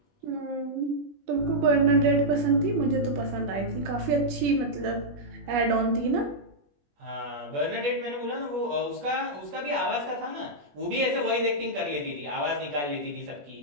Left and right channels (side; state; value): left; late; 21 ms